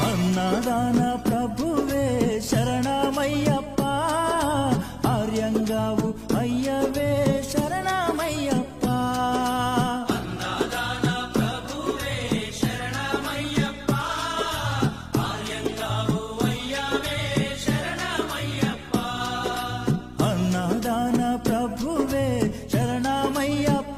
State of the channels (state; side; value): identical; both; correlation 1.00